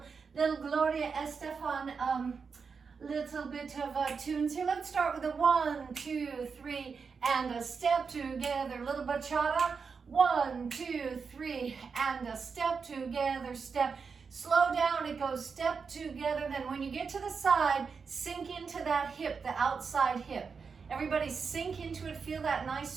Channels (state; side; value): quieter; left; 5.5 dB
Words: Gloria Estefan little bit of tunes here. Let's start with a 1, 2, 3, and a step together, little bachata. 1, 2, 3, and a step together, step. Slow down, it goes step together. Then when you get to the side, sink into that hip, the outside hip. Everybody sink into it, feel that nice